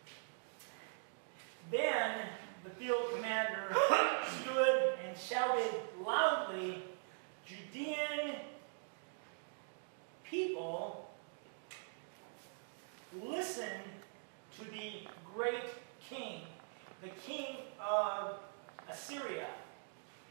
Then the field commander stood and shouted loudly, "Judean people, listen to the great king, the king of Assyria.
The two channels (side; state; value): left; silent; digital silence